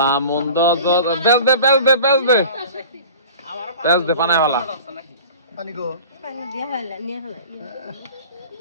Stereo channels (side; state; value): both; inverted; correlation -0.41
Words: মন্দ বেচ দে বেচ দে বেচ দে বেচ দে পানায় হলা।